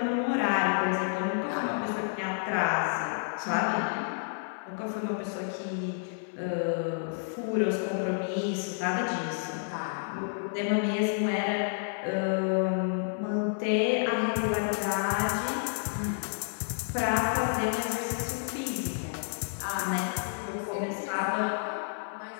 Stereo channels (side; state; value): right; silent; 58 dB below the other